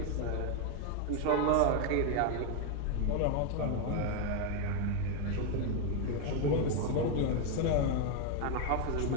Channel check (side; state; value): both; different; correlation 0.01